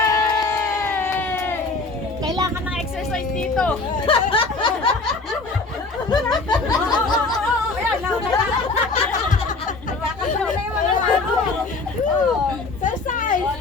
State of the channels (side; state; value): right; quieter; 3.7 dB